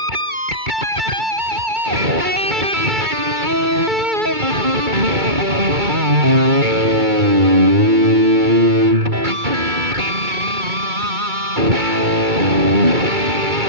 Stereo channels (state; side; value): late; left; 2.3 ms